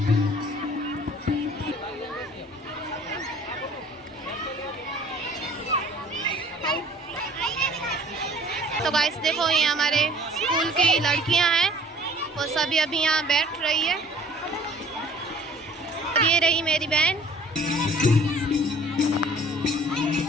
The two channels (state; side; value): normal; both; correlation 0.52